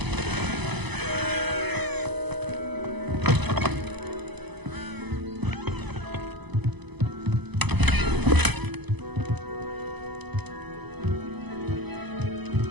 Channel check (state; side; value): late; left; 0.99 ms